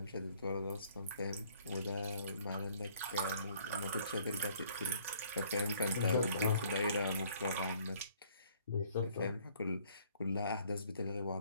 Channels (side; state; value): both; inverted; correlation -0.61